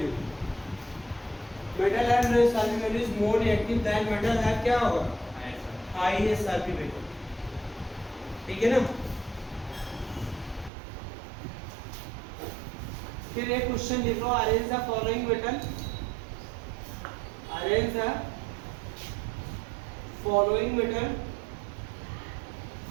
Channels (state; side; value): drops out; left; at 10.7 s